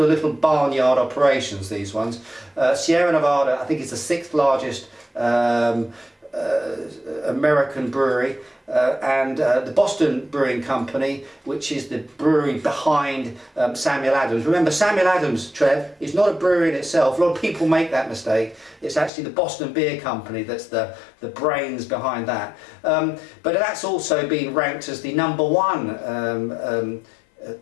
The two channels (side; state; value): right; drops out; at 19.1 s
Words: of little barnyard operations, these ones. Sierra Nevada, I think, is the 6th largest American brewery, and the Boston Brewing Company, which is the brewery behind Samuel Adams. Remember, Samuel Adams, Trev, is not a brewery in itself. A lot of people make that mistake. It's actually the Boston Beer Company that's the brains behind that. But that's also been ranked as the #1